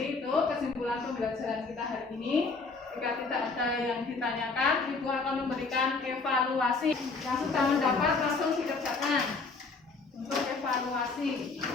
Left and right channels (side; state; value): right; quieter; 4.1 dB